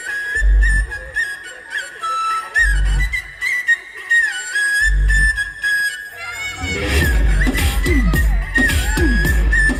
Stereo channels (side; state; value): both; identical; correlation 1.00